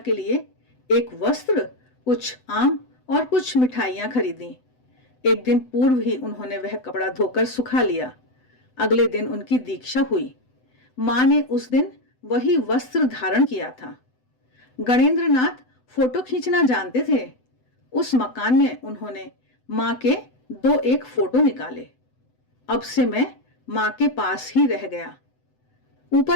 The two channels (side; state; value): right; late; 7.9 ms